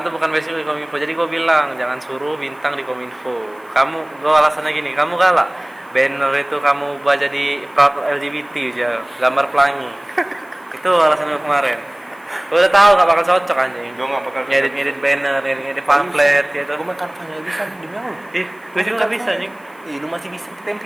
tuh bukan basic di Kominfo, jadi gue bilang jangan suruh bintang di Kominfo. Gue alasannya gini, kamu galak banner itu kamu ubah jadi proud LGBT aja, gambar pelangi. Itu alasan gue kemarin. Gue udah tahu gak bakal cocok anjing. Gue nggak bakal Ngedit banner, ngedit pamflet gitu. Gue makan nggak bisa demi Allah. Ih, gue juga gak bisa anjing. Ih, lu masih bisa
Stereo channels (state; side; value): noise; left; hiss, 30 dB below the sound